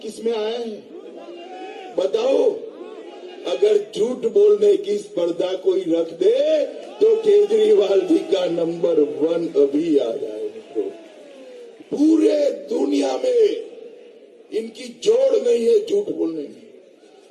किस में आया है? बताओ। अगर झूठ बोलने की स्पर्धा कोई रख दे तो केजरीवाल जी का नंबर 1 अभी आ जाए। मित्रों, पूरे दुनिया में इनकी जोड़ नहीं है झूठ बोलने में।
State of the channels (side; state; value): both; identical; correlation 1.00